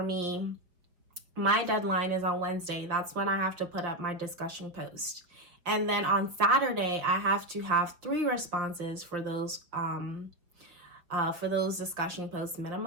me, my deadline is on Wednesday. That's when I have to put up my discussion post. And then on Saturday, I have to have 3 responses for those discussion posts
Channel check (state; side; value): late; left; 5.4 ms